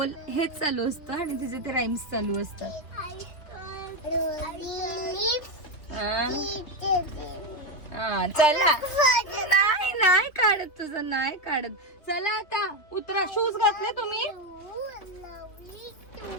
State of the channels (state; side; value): late; right; 3.0 ms